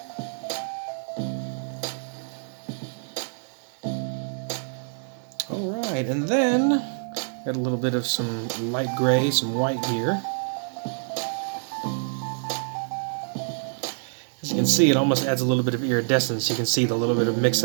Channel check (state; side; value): silent; left; digital silence